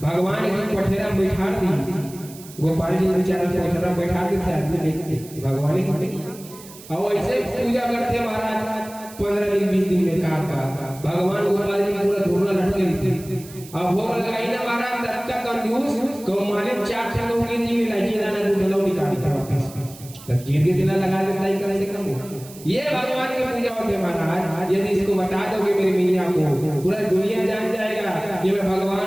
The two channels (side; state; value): right; noise; hiss, 18 dB below the sound